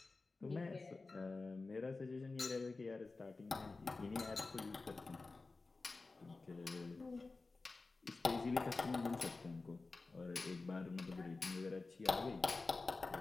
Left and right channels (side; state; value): right; quieter; 3.7 dB